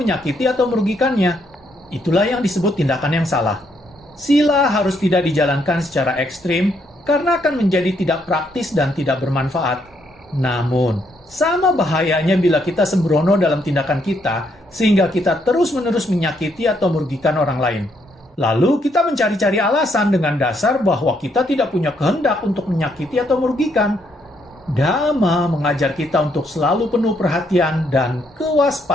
atau merugikannya. Itulah yang disebut tindakan yang salah. Sila harus tidak dijalankan secara ekstrim, karena akan menjadi tidak praktis dan tidak bermanfaat. Namun, sama bahayanya bila kita sembrono dalam tindakan kita, sehingga kita terus-menerus menyakiti atau merugikan orang lain. Lalu kita mencari-cari alasan dengan dasar bahwa kita tidak punya kehendak untuk menyakiti atau merugikan. Dhamma mengajar kita untuk selalu penuh perhatian dan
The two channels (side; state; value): both; normal; correlation 0.73